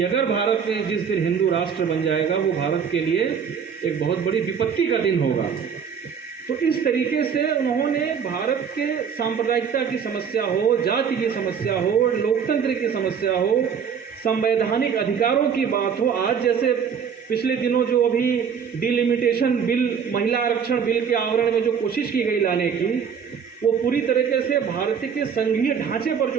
अगर भारत में जिस दिन हिंदू राष्ट्र बन जाएगा, वो भारत के लिए एक बहुत बड़ी विपत्ति का दिन होगा। तो इस तरीके से उन्होंने भारत के सांप्रदायिकता की समस्या हो, जाति की समस्या हो, लोकतंत्र की समस्या हो, संवैधानिक अधिकारों की बात हो। आज जैसे पिछले दिनों जो अभी डिलिमिटेशन बिल, महिला आरक्षण बिल के आवरण में जो कोशिश की गई लाने की, वो पूरी तरीके से भारत के संघीय ढांचे पर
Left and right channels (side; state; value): left; quieter; 7.0 dB